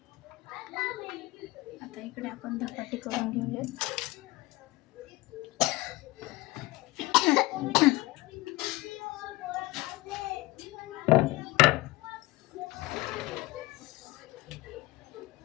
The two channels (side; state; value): right; quieter; 19.8 dB